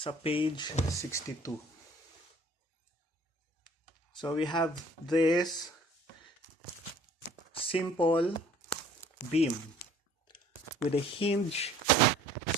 page 62. So we have this simple beam with a hinge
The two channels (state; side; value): normal; both; correlation 0.54